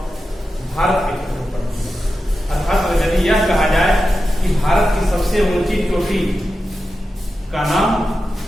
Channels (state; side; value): normal; both; correlation 0.91